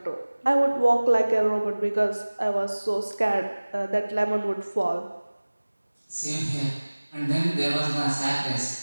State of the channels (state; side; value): inverted; both; correlation -1.00